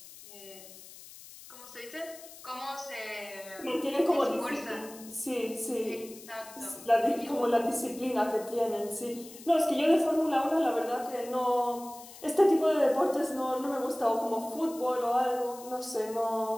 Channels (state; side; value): noise; left; hiss, 17 dB below the sound